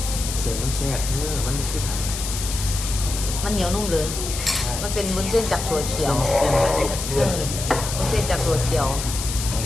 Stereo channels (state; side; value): noise; left; hiss, 6 dB below the sound